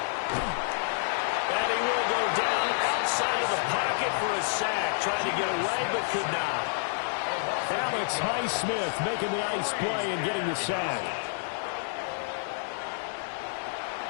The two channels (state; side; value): silent; right; digital silence